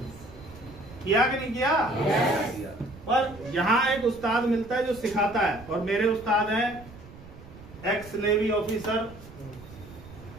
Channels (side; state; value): right; noise; rumble, 18 dB below the sound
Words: किया कि नहीं किया? पर यहाँ एक उस्ताद मिलता है जो सिखाता है, और मेरे उस्ताद हैं एक्स नेवी ऑफिसर